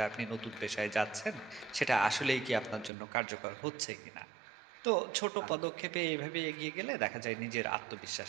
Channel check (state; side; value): drops out; left; at 2.9 s